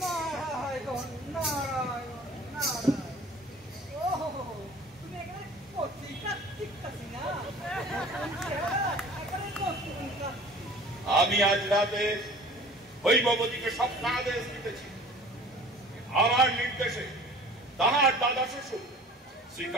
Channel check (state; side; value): normal; both; correlation 0.45